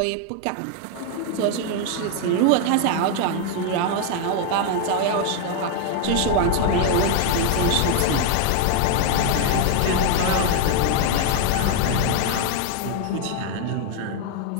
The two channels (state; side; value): different; both; correlation 0.00